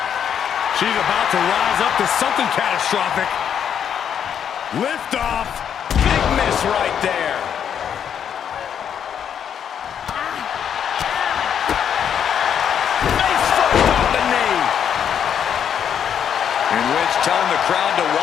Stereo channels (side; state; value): right; quieter; 8.5 dB